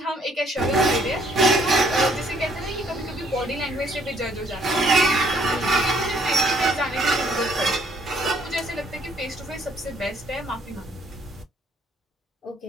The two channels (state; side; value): normal; both; correlation 0.65